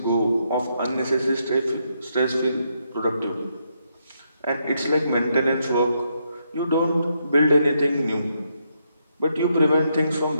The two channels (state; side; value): inverted; both; correlation -0.78